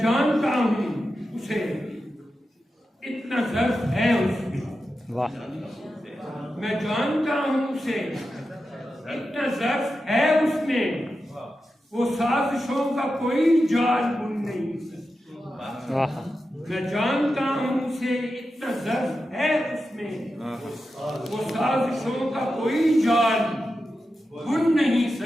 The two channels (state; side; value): normal; both; correlation 0.90